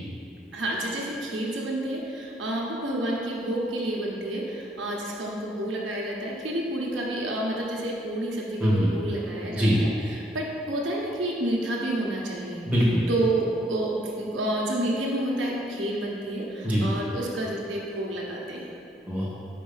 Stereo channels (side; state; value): both; normal; correlation 0.66